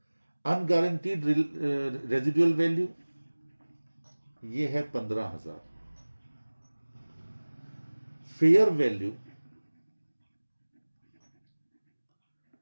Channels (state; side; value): inverted; both; correlation -1.00